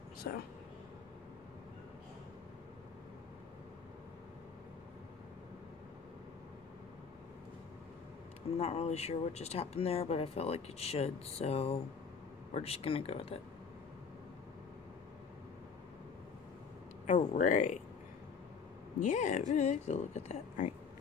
so. I'm not really sure what just happened there, but I felt like it should, so we're just gonna go with it. Alright. Yeah, I really like to look at that. Alright.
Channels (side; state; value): right; quieter; 5.8 dB